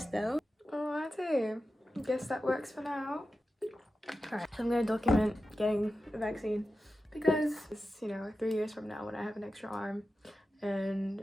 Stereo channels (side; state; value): both; normal; correlation 0.92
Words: though. Alrighty. Guess that works for now. Alright, so I'm gonna document getting a vaccine because it's, you know, 3 years from now when I have an extra arm and